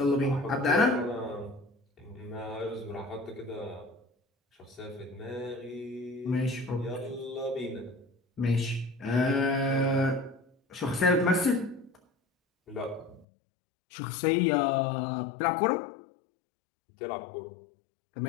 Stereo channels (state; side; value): drops out; right; at 13.2 s